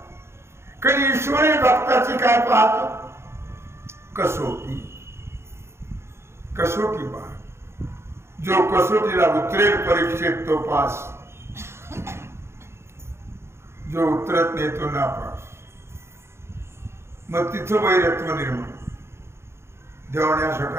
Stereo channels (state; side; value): late; left; 0.13 ms